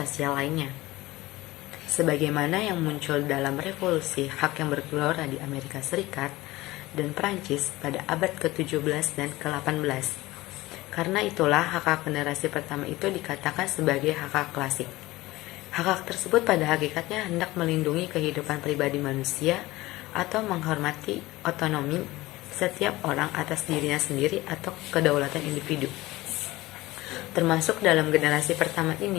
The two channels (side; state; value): right; quieter; 18.9 dB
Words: lainnya. Sebagaimana yang muncul dalam revolusi hak yang bergelora di Amerika Serikat dan Prancis pada abad ke-17 dan ke-18. Karena itulah hak-hak generasi pertama itu dikatakan sebagai hak-hak klasik. Hak-hak tersebut pada hakikatnya hendak melindungi kehidupan pribadi manusia atau menghormati otonomi setiap orang atas dirinya sendiri atau kedaulatan individu. Termasuk dalam generasi pertama